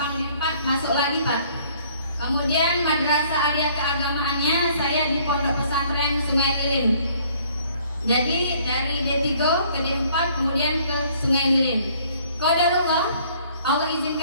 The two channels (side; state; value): both; inverted; correlation -0.59